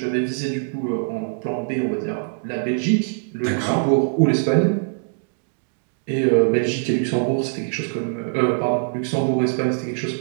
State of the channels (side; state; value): left; silent; digital silence